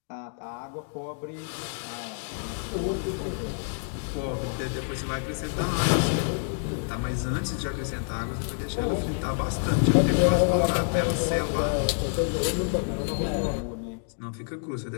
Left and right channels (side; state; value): right; silent; 59 dB below the other